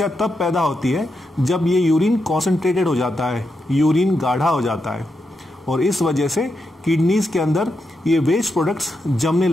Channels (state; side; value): normal; both; correlation 0.85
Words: तब पैदा होती है जब ये यूरिन कॉन्सेंट्रेटेड हो जाता है, यूरिन गाढ़ा हो जाता है और इस वजह से किडनीज के अंदर ये वेस्ट प्रोडक्ट्स जमने